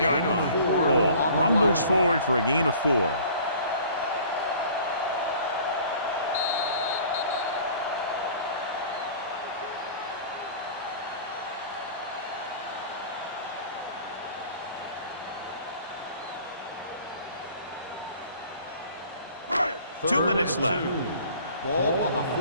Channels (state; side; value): inverted; both; correlation -0.48